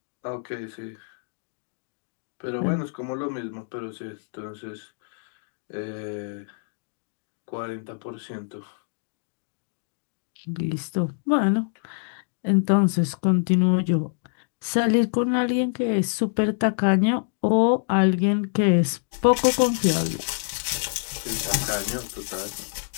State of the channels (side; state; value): right; silent; digital silence